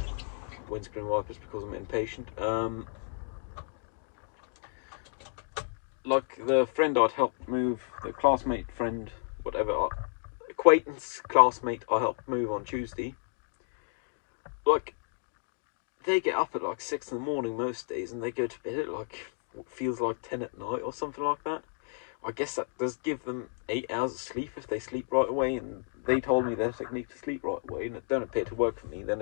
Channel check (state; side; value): silent; right; digital silence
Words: Windscreen wipers because I'm impatient. Like the friend I'd helped move, the classmate friend, whatever, acquaintance, classmate I helped move on Tuesday. Like, they get up at like 6 in the morning most days and they go to bed at like what feels like 10 at night or something like that. I guess that does give them 8 hours of sleep if they sleep right away, and they told me their technique to sleep right away, and it don't appear to work for me. Then